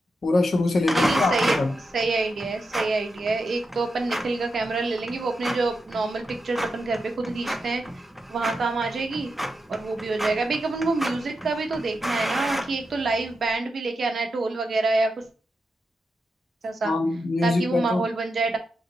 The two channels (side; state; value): both; normal; correlation 0.87